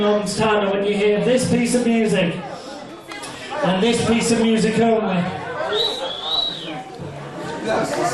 moments' time, and when you hear this piece of music, and this piece of music only,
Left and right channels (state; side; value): identical; both; correlation 1.00